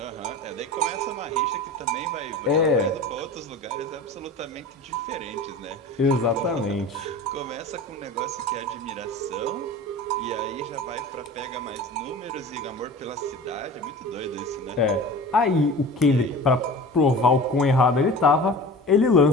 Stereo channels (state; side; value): normal; both; correlation 0.36